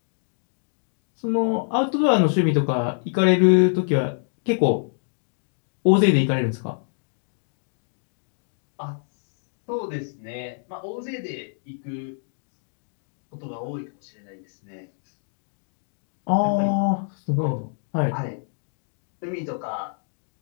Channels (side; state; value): right; silent; digital silence